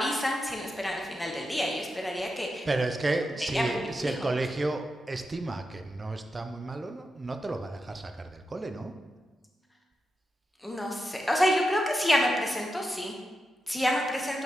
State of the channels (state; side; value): normal; both; correlation 0.88